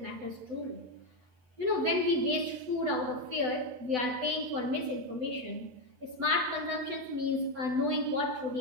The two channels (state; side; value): late; left; 8.0 ms